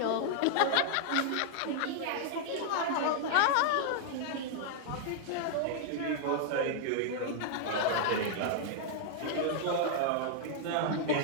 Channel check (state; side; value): different; both; correlation 0.00